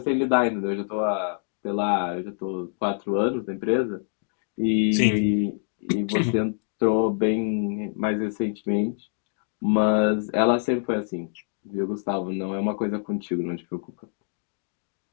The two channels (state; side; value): silent; right; digital silence